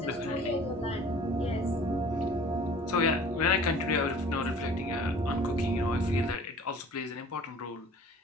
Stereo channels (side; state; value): both; normal; correlation 0.48